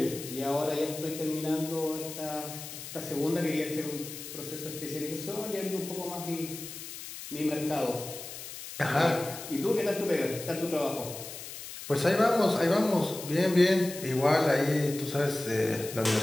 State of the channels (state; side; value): noise; left; hiss, 11 dB below the sound